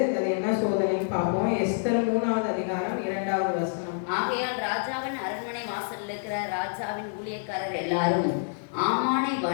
அது என்ன சோதனைன்னு பார்ப்போம். எஸ்தர் 3வது அதிகாரம் 2வது வசனம். ஆகையால் ராஜாவின் அரண்மனை வாசலில் இருக்கிற ராஜாவின் ஊழியக்காரர் எல்லாரும் ஆமானை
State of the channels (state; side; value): silent; right; digital silence